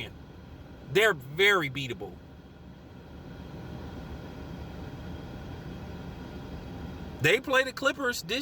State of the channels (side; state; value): both; identical; correlation 1.00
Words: They're very beatable. They play the Clippers